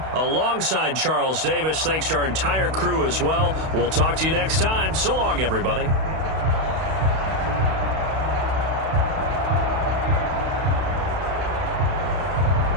alongside Charles Davis. Thanks to our entire crew as well. We'll talk to you next time. So long, everybody.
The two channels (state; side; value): late; left; 32 ms